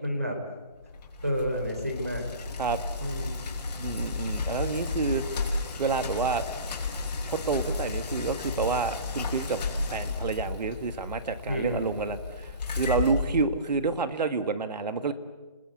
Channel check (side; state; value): both; inverted; correlation -0.39